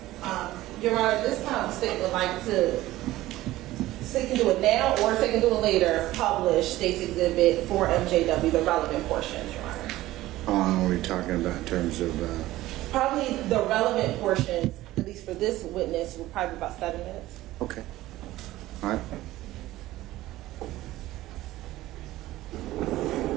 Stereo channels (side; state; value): left; quieter; 16.3 dB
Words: Your Honor, this time the state would like to, state can do it now or they can do it later, publish State's Exhibit 4 MJW, the relevant portions, Your Honor. How long are we talking about in terms of? Probably the relevant portions, at least for this witness, will probably be about 7 minutes. Okay. All right.